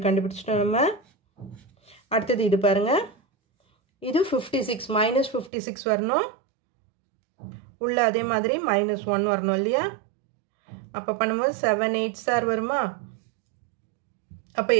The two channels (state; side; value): drops out; left; at 5.5 s